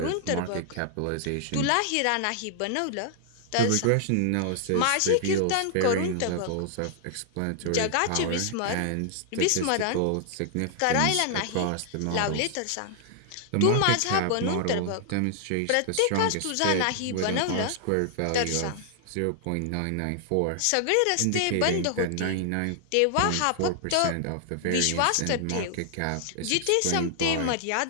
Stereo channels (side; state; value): both; different; correlation 0.00